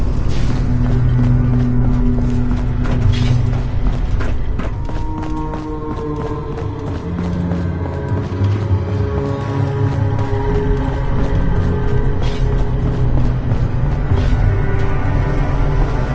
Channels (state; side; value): identical; both; correlation 1.00